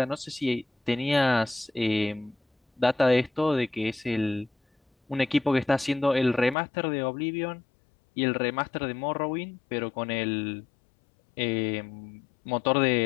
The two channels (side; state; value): right; drops out; at 6.6 s